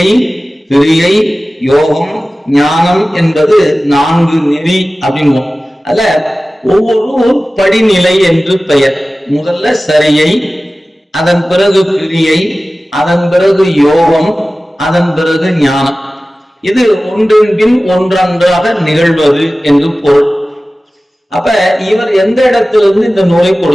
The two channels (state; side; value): normal; both; correlation 0.96